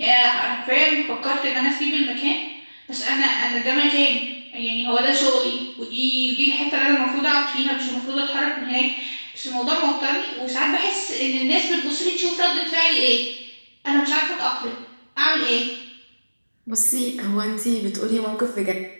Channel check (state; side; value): inverted; both; correlation -1.00